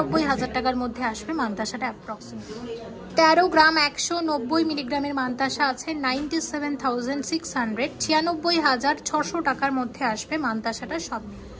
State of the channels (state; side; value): identical; both; correlation 1.00